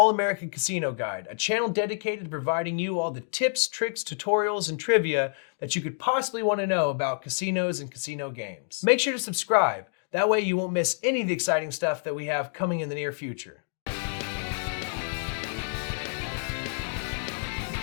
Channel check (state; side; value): silent; right; digital silence